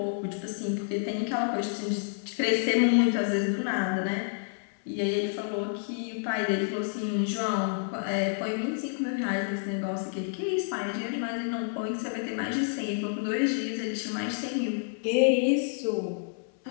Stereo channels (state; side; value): silent; right; 59 dB below the other